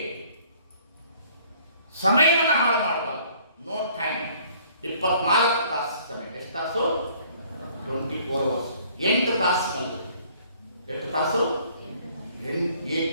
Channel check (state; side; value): inverted; both; correlation -0.58